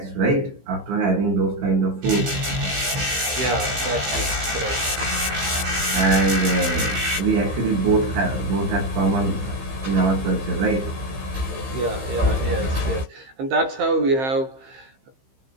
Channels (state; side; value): late; left; 15 ms